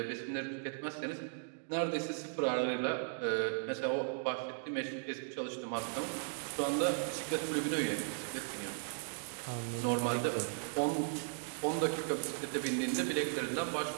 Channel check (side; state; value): left; silent; digital silence